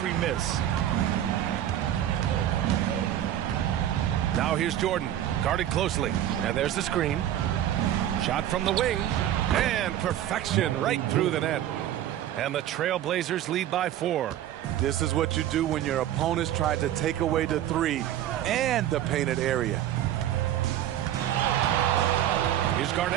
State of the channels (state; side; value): quieter; left; 11.8 dB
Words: miss. Now here's Jordan, guarded closely. And there's the screen. Shot from the wing. And perfection right through the net. And the Trailblazers lead by 4. This is what you do when your opponents try to take away the 3 and the painted area. Here's